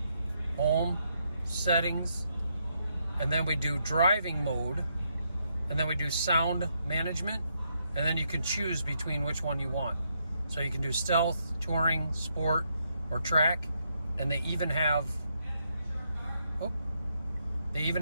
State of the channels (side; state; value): both; inverted; correlation -0.77